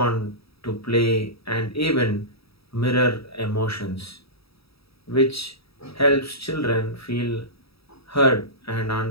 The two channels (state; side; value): late; right; 0.77 ms